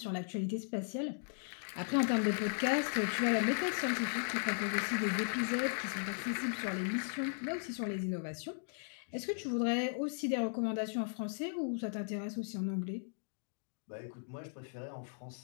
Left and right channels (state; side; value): silent; right; digital silence